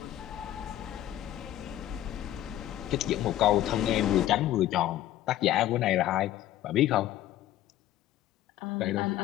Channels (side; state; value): right; quieter; 13.3 dB